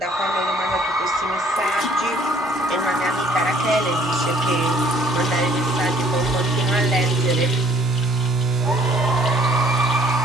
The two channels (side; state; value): both; normal; correlation 0.59